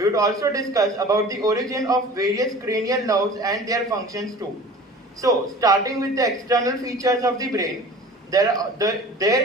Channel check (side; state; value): both; normal; correlation 0.41